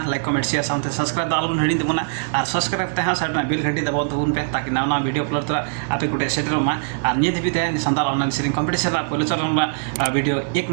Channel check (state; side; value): silent; left; digital silence